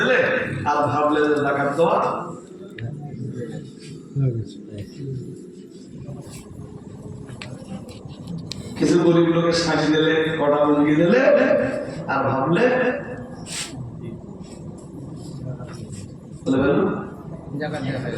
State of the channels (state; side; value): identical; both; correlation 1.00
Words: আর ভাবলে যে যাকাত দেওয়া। কিছু গরিব লোকের শাড়ি দিলে, কটা লুঙ্গি দিলে আর ভাবলে